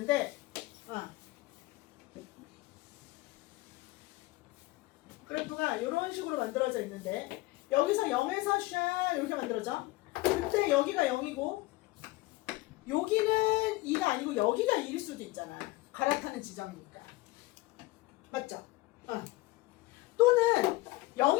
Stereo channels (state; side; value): quieter; right; 20.5 dB